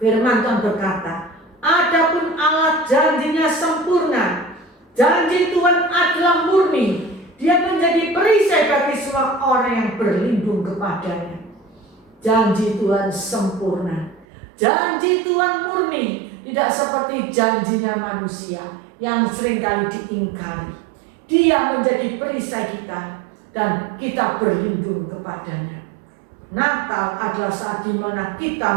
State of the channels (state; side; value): drops out; left; at 14.2 s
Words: firman Tuhan berkata, adapun Allah janjinya sempurna, janji Tuhan adalah murni, Dia menjadi perisai bagi semua orang yang berlindung kepadanya. Janji Tuhan sempurna, janji Tuhan murni, tidak seperti janjinya manusia yang seringkali diingkari. Dia menjadi perisai kita dan kita berlindung kepadanya. Natal adalah saat di mana kita